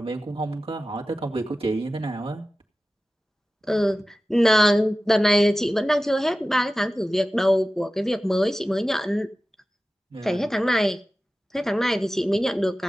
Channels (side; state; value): both; normal; correlation 0.95